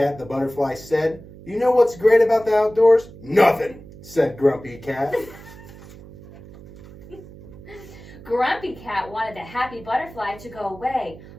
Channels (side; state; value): right; noise; hum, 18 dB below the sound